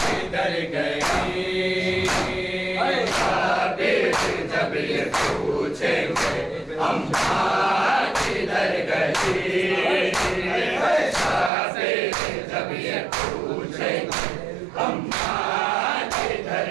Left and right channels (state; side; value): drops out; left; at 11.5 s